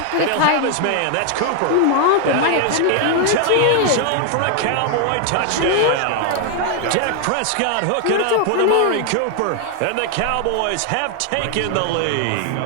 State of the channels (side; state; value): both; different; correlation 0.01